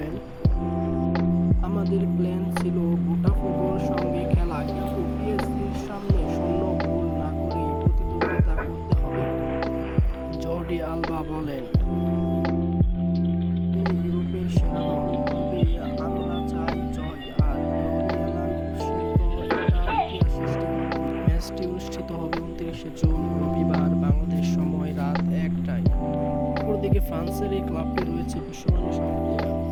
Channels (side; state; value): both; identical; correlation 1.00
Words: আমাদের প্ল্যান ছিল বোটাফোগোর সঙ্গে খেলা, কিন্তু পিএসজির সামনে শূন্য গোল না করেই প্রতিদ্বন্দ্বিতা করতে হবে। জর্ডি আলবা বলেন, ইউরোপের সেরা দল, তবে আমরা চাই জয় আর লরিয়ানা নিশ্চিত এটা ইতিহাস সৃষ্টি করবে। ম্যাচটি অনুষ্ঠিত হবে ২৯শে জুন রবিবার বাংলাদেশ সময় রাত ১টায়। অপরদিকে ফ্রান্সের এই ক্লাবটি রয়েছে বিশ্বমানের সব প্লেয়ার,